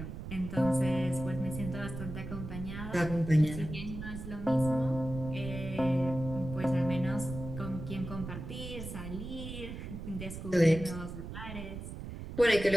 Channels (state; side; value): noise; right; rumble, 9 dB below the sound